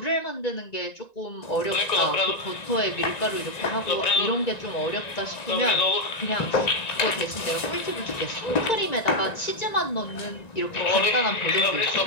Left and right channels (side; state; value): right; late; 1.9 ms